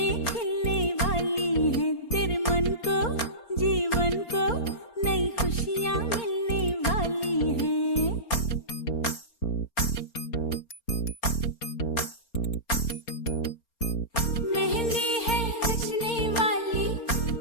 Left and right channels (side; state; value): right; late; 4.3 ms